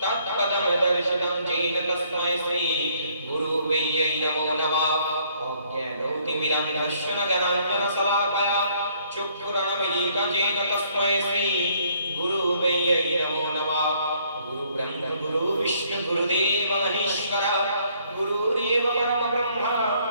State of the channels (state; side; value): inverted; both; correlation -0.65